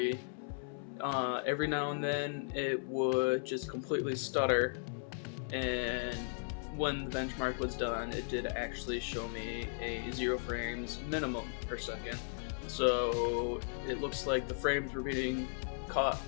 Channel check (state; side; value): silent; right; 54 dB below the other